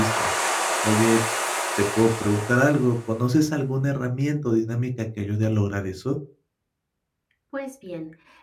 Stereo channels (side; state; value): both; identical; correlation 1.00